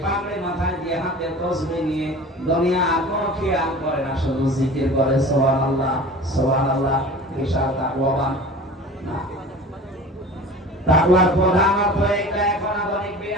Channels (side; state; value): both; normal; correlation 0.39